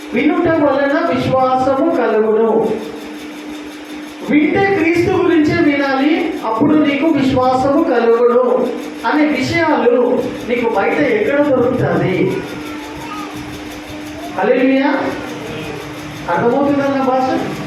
వినుట వలన విశ్వాసము కలుగును. వింటే క్రీస్తు గురించే వినాలి, అప్పుడు నీకు విశ్వాసము కలుగును అనే విషయాలు నీకు బయట ఎక్కడ దొరుకుతుంది? హల్లెలూయా. అర్థమవుతుందా నా భాష?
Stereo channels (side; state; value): both; identical; correlation 1.00